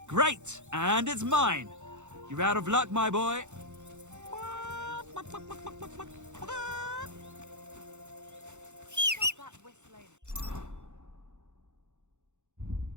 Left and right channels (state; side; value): late; left; 0.84 ms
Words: Great! And it's mine! You're out of luck, my boy. Stop that whistling.